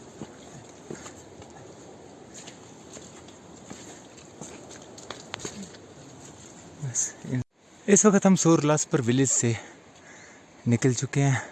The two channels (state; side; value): identical; both; correlation 1.00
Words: इस वक्त हम सोरलासपर विलेज से निकल चुके हैं।